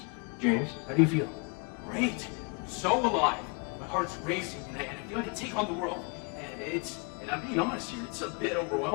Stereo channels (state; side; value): quieter; right; 33.0 dB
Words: James, how do you feel? Great! So alive! My heart's racing and I feel like I can take on the world. And I'm being honest here, it's a bit